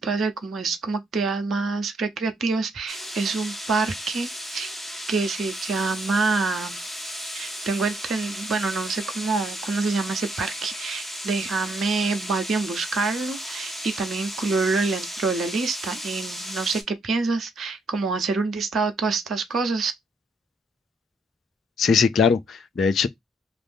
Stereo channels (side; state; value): both; normal; correlation 0.71